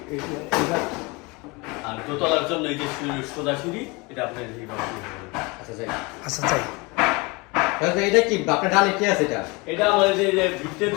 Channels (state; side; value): quieter; right; 25.6 dB